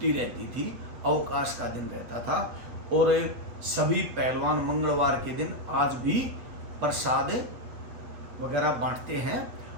रहती थी, अवकाश का दिन रहता था। और सभी पहलवान मंगलवार के दिन आज भी प्रसाद वगैरह बांटते हैं।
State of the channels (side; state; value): left; late; 8.4 ms